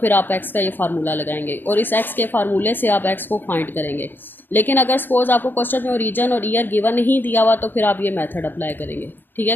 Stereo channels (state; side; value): late; right; 0.093 ms